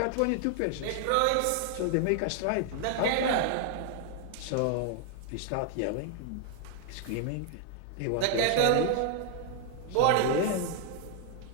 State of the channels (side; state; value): both; different; correlation 0.00